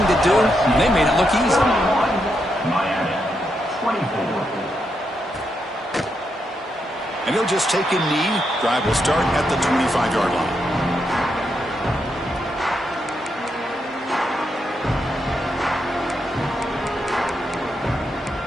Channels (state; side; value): normal; both; correlation 0.82